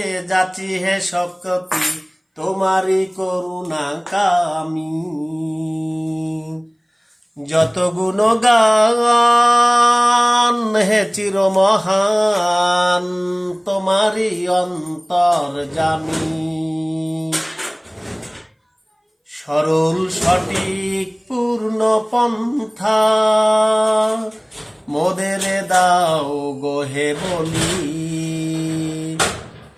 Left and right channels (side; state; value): both; identical; correlation 1.00